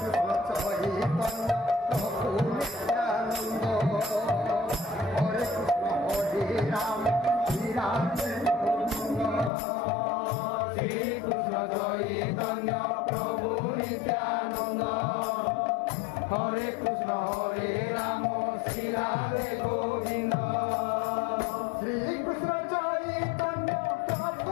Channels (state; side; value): drops out; right; at 9.5 s